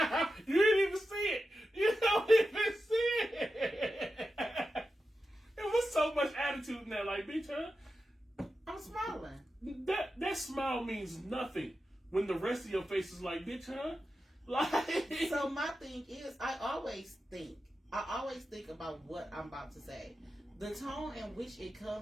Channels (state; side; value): normal; both; correlation 0.91